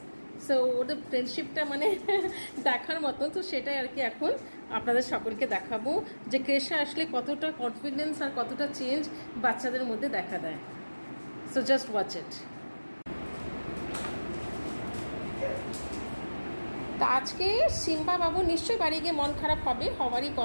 So ওদের ফ্রেন্ডশিপটা মানে দেখার মতো, তো সেটাই আর কি এখন আপনাদের সকলকে দেখাবো যে ক্রেশে আসলে কতটা কনফিডেন্স আর কতটা চেঞ্জ বাচ্চাদের মধ্যে দেখা দেয়। So just watch it. তা আজকে সিম্বা বাবু নিশ্চয়ই বাড়ি গিয়ে মন খারাপ হওয়ারই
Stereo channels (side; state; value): both; inverted; correlation -1.00